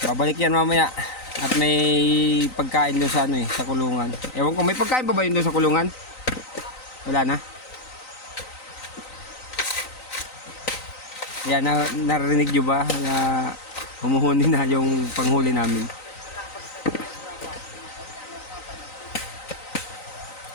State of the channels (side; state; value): right; late; 3.9 ms